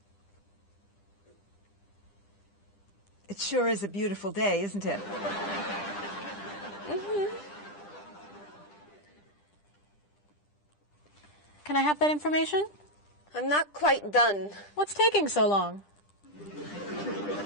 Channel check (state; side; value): late; right; 10 ms